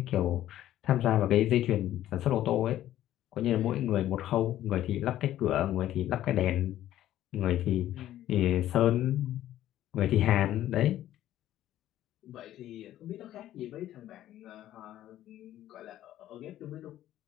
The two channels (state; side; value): quieter; right; 13.0 dB